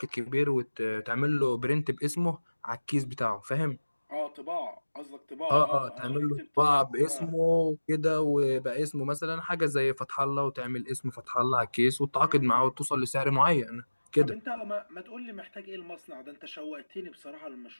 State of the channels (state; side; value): inverted; both; correlation -1.00